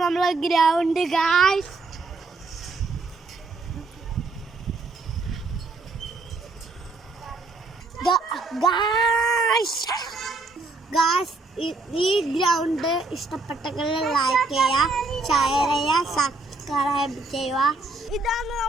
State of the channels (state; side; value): quieter; left; 3.6 dB